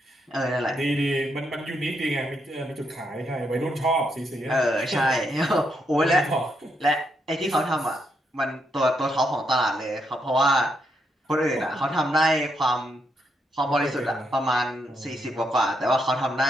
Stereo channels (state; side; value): normal; both; correlation 0.79